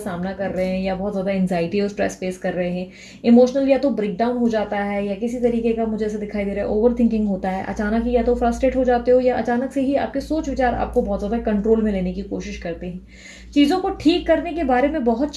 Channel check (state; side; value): identical; both; correlation 1.00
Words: कर रहे हैं, या बहुत ज़्यादा एंजाइटी और स्ट्रेस फेस कर रहे हैं। इमोशनल या तो ब्रेकडाउन हो जाता है, या किसी तरीके का मुझे ऐसा दिखाई दे रहा है ओवर थिंकिंग होता है। अचानक ही या तो फ्रस्ट्रेट हो जाते हो, या अचानक से ही आपके सोच विचार आपको बहुत ज़्यादा कंट्रोल में लेने की कोशिश करते हैं। चीज़ों को ठीक करने के बारे में बहुत